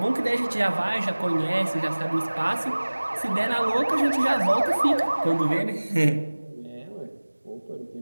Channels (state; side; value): inverted; both; correlation -1.00